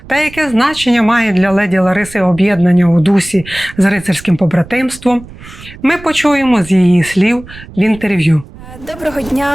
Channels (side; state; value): right; noise; rumble, 18 dB below the sound